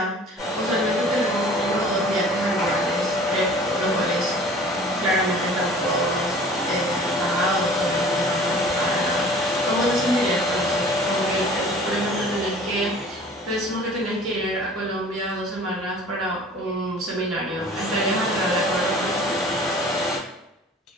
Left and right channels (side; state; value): both; normal; correlation 0.47